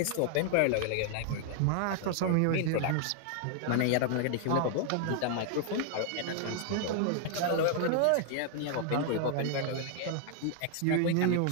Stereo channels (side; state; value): both; different; correlation 0.00